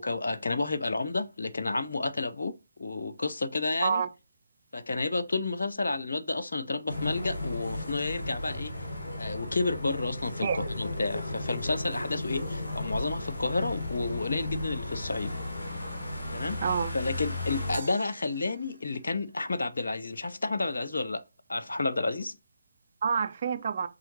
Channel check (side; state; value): both; inverted; correlation -0.84